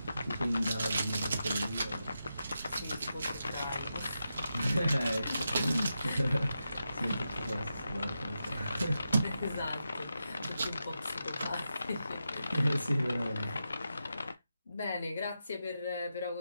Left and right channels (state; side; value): inverted; both; correlation -0.88